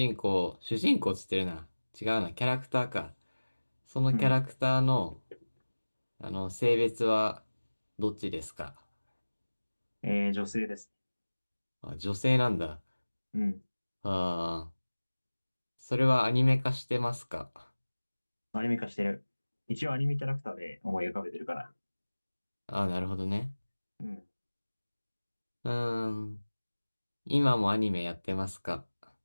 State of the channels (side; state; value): both; inverted; correlation -1.00